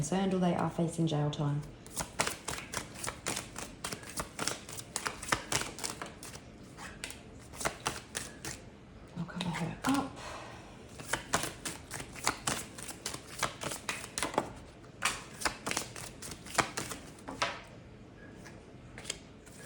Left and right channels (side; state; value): both; identical; correlation 1.00